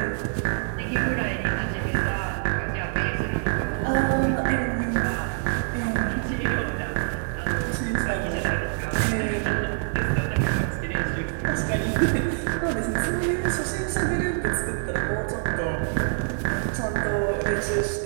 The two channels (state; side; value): silent; left; 55 dB below the other